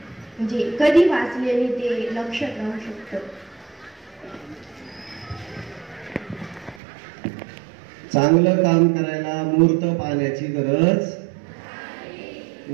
म्हणजे कधी वाचल्याने ते लक्षात राहू शकतं? चांगलं काम करायला मुहूर्त पाहण्याची गरज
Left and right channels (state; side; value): drops out; left; at 6.8 s